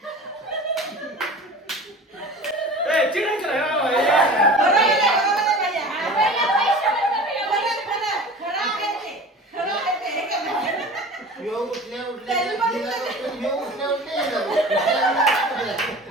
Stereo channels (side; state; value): both; normal; correlation 0.38